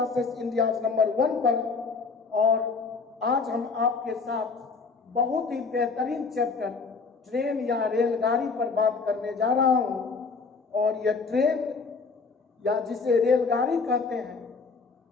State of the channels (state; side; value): quieter; right; 4.6 dB